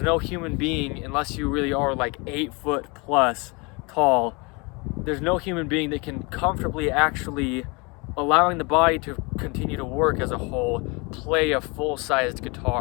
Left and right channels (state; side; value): quieter; right; 28.7 dB